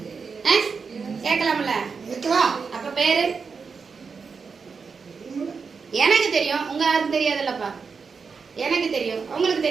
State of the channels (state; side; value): quieter; left; 5.3 dB